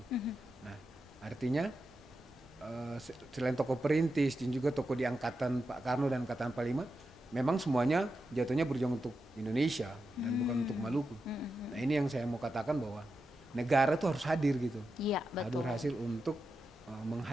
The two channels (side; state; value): both; normal; correlation 0.89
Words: Nah, artinya selain tokoh perintis dan juga tokoh di angkatan Pak Karno dan angkatan 45, memang semuanya jatuhnya berjuang untuk Indonesia dan bukan untuk Maluku. Nah, ini yang saya mau katakan bahwa negara tuh harus hadir gitu. Iya betul. Hadir hasil untuk